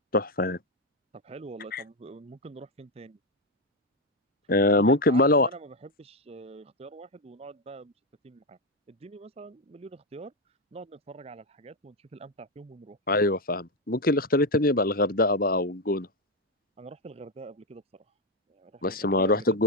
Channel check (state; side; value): normal; both; correlation 0.06